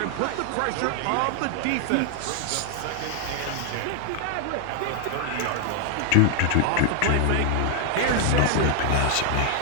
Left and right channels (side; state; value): both; different; correlation 0.00